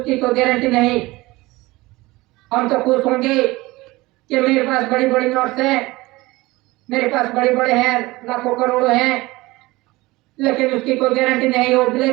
कोई गारंटी नहीं। हम तो खुश होंगे कि मेरे पास बड़ी बड़ी नोट्स हैं, मेरे पास बड़े बड़े हैं, लाखों करोड़ों हैं, लेकिन उसकी कोई गारंटी नहीं, वो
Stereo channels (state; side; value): quieter; left; 20.7 dB